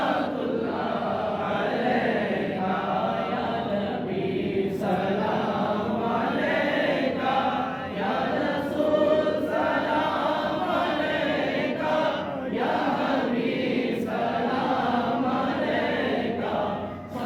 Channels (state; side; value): identical; both; correlation 1.00